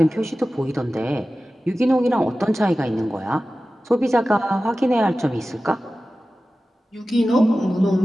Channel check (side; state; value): both; normal; correlation 0.95